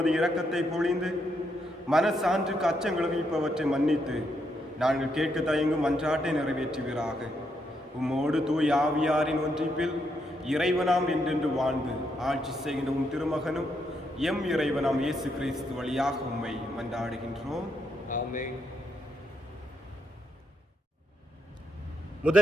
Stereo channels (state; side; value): normal; both; correlation 0.78